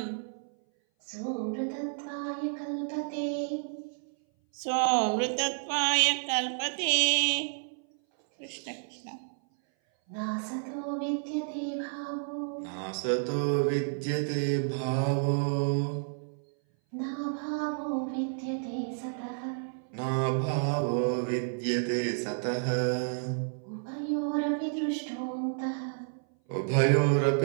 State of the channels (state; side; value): silent; left; 57 dB below the other